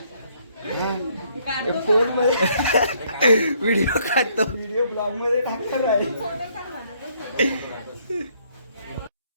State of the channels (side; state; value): both; inverted; correlation -0.68